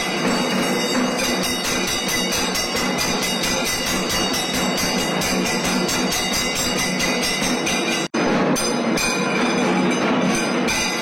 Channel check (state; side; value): identical; both; correlation 1.00